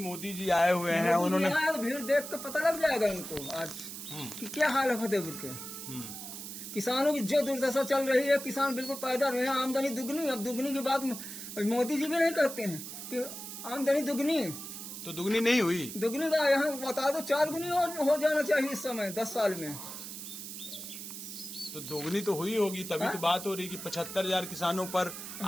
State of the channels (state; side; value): noise; right; hiss, 9 dB below the sound